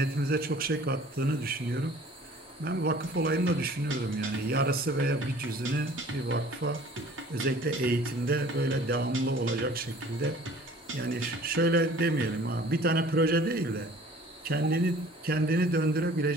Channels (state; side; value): normal; both; correlation 0.50